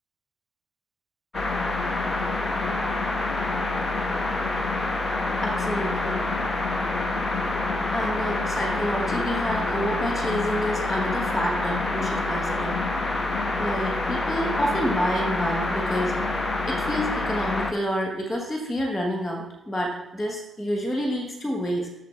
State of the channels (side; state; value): both; normal; correlation 0.81